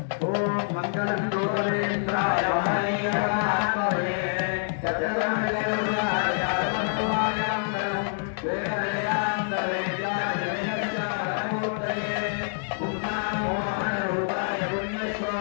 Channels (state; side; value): silent; right; digital silence